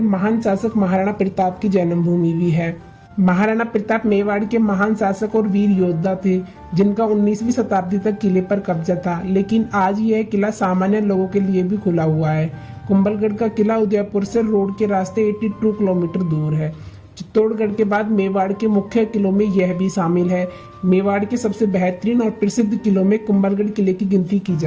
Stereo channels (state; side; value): identical; both; correlation 1.00